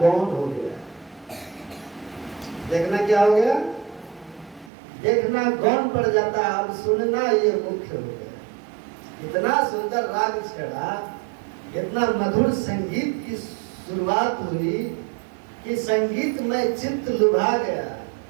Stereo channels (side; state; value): left; drops out; at 4.7 s